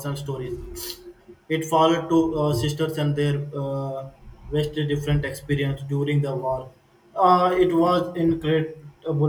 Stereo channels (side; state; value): both; identical; correlation 1.00